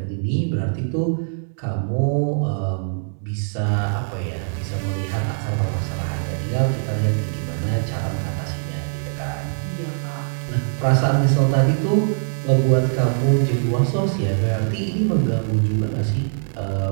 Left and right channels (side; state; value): left; silent; digital silence